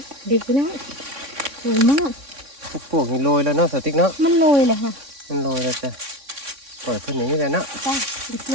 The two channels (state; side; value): late; left; 3.6 ms